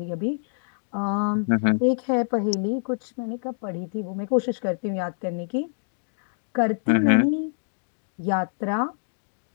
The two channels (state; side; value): silent; right; digital silence